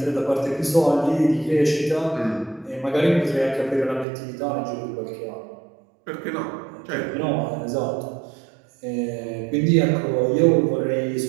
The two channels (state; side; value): drops out; left; at 4.0 s